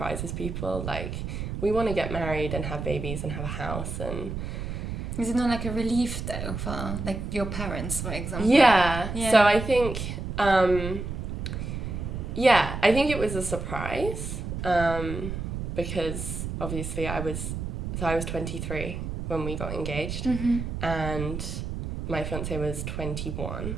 people. Like, we want to get married and have babies and have a house. And is it not like a relief though for like your parents, for example? Yeah. So I think, I think it was a surprise because obviously I was 23 when we got engaged, and my fiance was 21.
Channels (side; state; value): right; noise; rumble, 5 dB below the sound